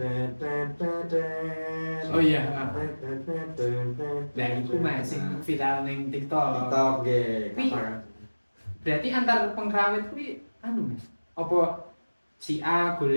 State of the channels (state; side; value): inverted; both; correlation -1.00